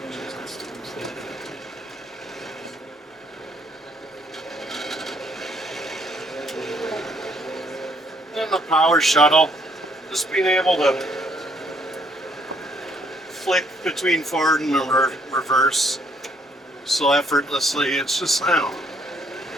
And the power shuttle, just being able to flick between forward and reverse so effortlessly, it's just, I don't know.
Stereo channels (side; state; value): both; normal; correlation 0.67